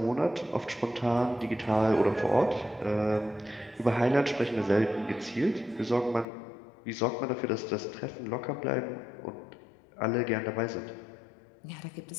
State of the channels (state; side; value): drops out; right; at 6.2 s